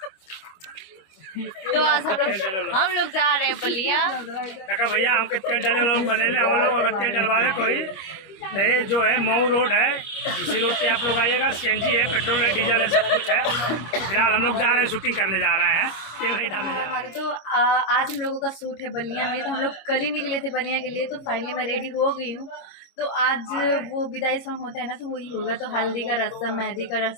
तो आज हम लोग जा रहे हैं बलिया। भैया हमके तेल डाले वाला लोग बने हम लोग अगर तेल डलवावे कोई ये जो है मऊ रोड है, इसी रोड पे आप लोग आइएगा। सीएनजी है, पेट्रोल है, डीजल है, सब कुछ है। फिलहाल हम लोग जा रहे हैं, शूटिंग करने जा रहे हैं, तेल नहीं डालने जा रहे हैं। तो आज हम लोगों का शूट है बलिया में। तो हम लोग कल ही निकले थे बलिया के लिए। तो फाइनली मैं रेडी हो गई हूँ। तो आज वो विदाई सॉन्ग होता है ना, तो वही होगा। तो हल्दी का रस्म, मेहंदी का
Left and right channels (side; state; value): right; late; 25 ms